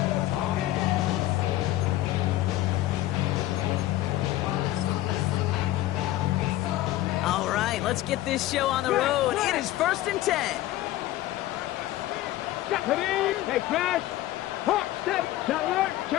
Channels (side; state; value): right; quieter; 15.3 dB